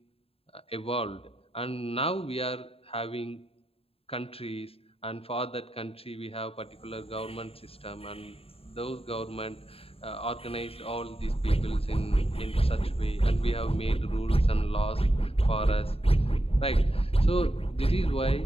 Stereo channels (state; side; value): late; right; 0.28 ms